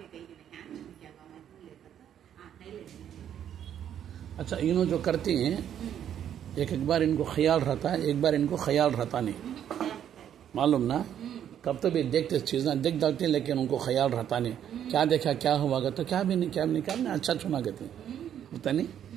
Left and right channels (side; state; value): left; quieter; 9.8 dB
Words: गई नहीं क्या बाबा नहीं लेता था नहीं ले। अच्छा, इन्हों जो करती हैं एक बार इनको ख्याल रहता है, एक बार इनको ख्याल रहता नहीं, मालूम ना? कब तो भी देखते चीज़ें देख डालते हैं, लेकिन उनको ख्याल रहता नहीं। क्या देखा, क्या हुआ तो क्या भी नहीं अच्छा छुना कहते होता नहीं।